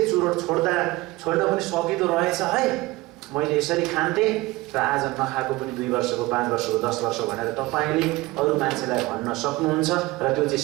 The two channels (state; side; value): quieter; left; 20.5 dB